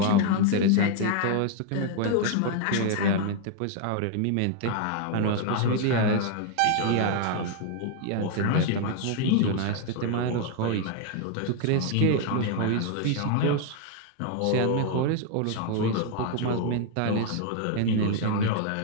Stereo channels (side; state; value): both; different; correlation 0.00